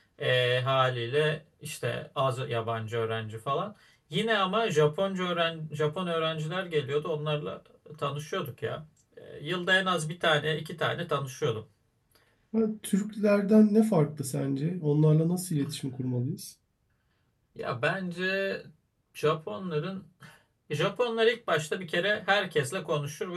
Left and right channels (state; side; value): identical; both; correlation 1.00